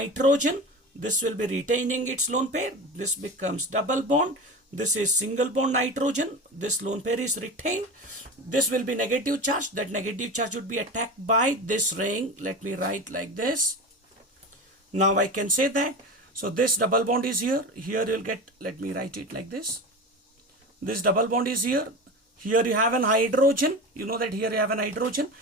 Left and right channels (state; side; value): normal; both; correlation 0.28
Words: This will be retaining its lone pair. This becomes double bond. This is single bond nitrogen. This lone pair is retained. This will be negative charge. That negative charge would be attacked by this ring. Let me write like this. Now I can say that. So this double bond is here. Here you'll get, let me write it like this. This double bond is here. Here you have an hydrogen. You know that here you have an hydrogen.